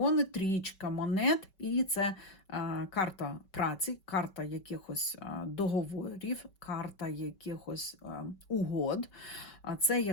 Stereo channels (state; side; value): late; right; 5.3 ms